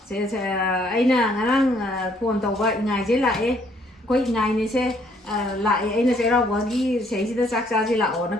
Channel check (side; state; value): both; normal; correlation 0.66